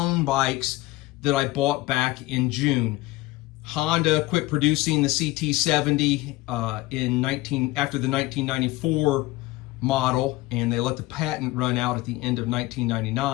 bikes that I bought back in June. Honda quit producing the CT70 after the 1994 model, and they let the patent run out at the end of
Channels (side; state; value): right; quieter; 19.6 dB